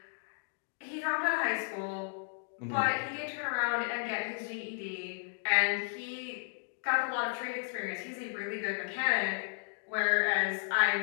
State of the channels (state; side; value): silent; right; 55 dB below the other